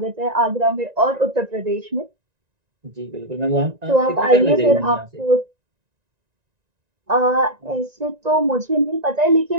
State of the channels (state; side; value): late; left; 1.9 ms